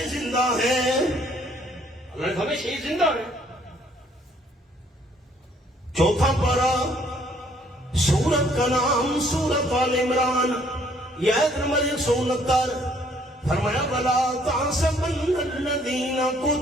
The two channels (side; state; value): both; normal; correlation 0.63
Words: زندہ ہیں؟ اللہ نے ہمیں شہید زندہ ہے۔ چوتھا پارہ، سورت کا نام سورت آل عمران، یہ آیت نمبر 169، فرمایا وَلَا تَحْسَبَنَّ الَّذِينَ